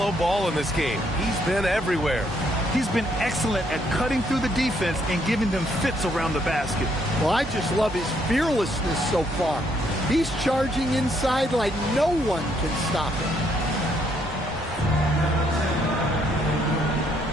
Ball in this game. He's been everywhere. He's been excellent at cutting through the defense and giving them fits around the basket. Well, I just love his fearlessness so far. He's charging inside like no one can stop him.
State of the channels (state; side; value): normal; both; correlation 0.71